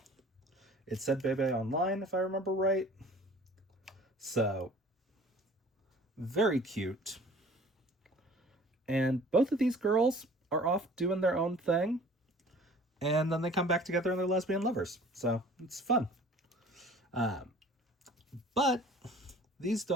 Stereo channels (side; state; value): both; normal; correlation 0.49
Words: it said Bebe online, if I remember right. So, very cute. And both of these girls are off doing their own thing, and then they come back together and they're lesbian lovers. So, it's fun. But these